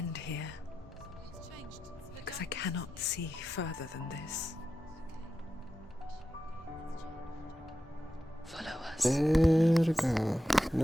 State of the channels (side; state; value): both; normal; correlation 0.90